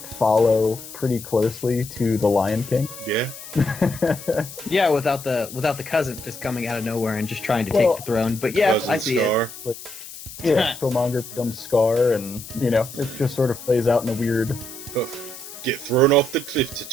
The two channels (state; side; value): noise; left; hiss, 14 dB below the sound